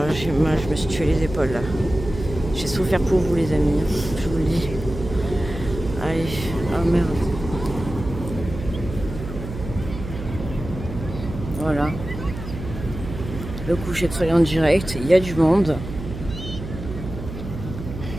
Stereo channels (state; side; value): noise; right; hum, 9 dB below the sound